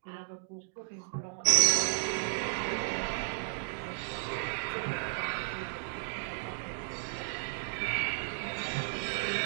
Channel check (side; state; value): left; silent; digital silence